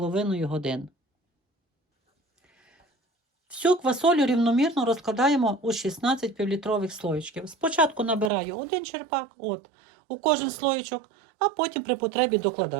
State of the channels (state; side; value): drops out; left; at 8.3 s